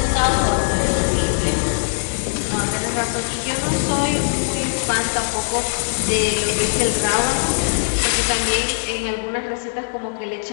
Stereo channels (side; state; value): right; silent; digital silence